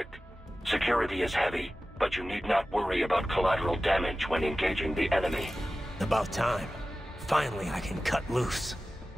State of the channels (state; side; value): normal; both; correlation 0.95